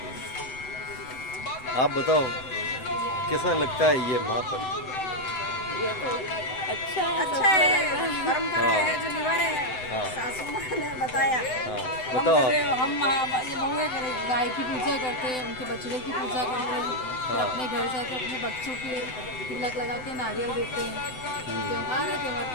आप बताओ कैसा लगता है ये महापर्व? ये तो अच्छा है, परंपरा है जो निभा रहे हैं। सासू माँ ने बताया। बताओ। हम ये बहुएं करें, गाय की पूजा करते हैं, उनके बछड़े की पूजा करते हैं फिर अपने घर जाके अपने बच्चों के तिलक लगा के नारियल देते हैं। त्योहार है, त्योहार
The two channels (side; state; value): right; late; 7.9 ms